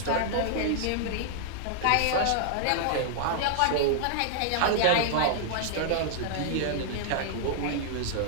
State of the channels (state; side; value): different; both; correlation -0.01